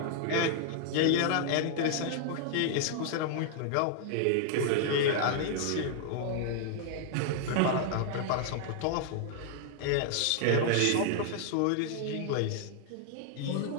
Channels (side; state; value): both; different; correlation 0.00